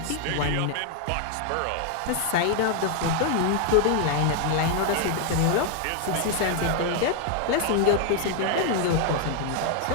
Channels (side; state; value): both; different; correlation 0.00